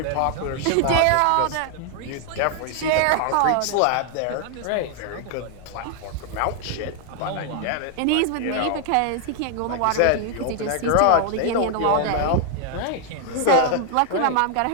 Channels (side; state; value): both; different; correlation 0.00